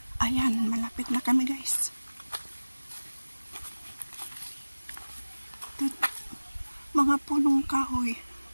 Ayan, malapit na kami guys. Ito, mga punong kahoy.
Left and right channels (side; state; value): both; inverted; correlation -1.00